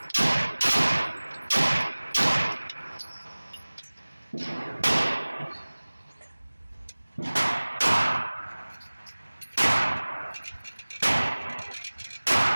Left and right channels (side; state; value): both; inverted; correlation -1.00